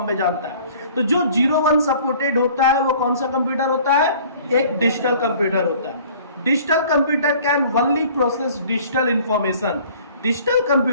में जानता है। तो जो 0-1 सपोर्टेड होता है वो कौन सा कंप्यूटर होता है, एक डिजिटल कंप्यूटर होता है। Digital computer can only process digital information. Digital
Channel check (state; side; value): inverted; both; correlation -0.51